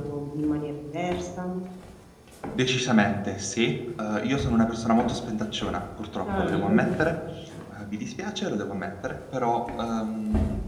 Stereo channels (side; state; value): both; identical; correlation 1.00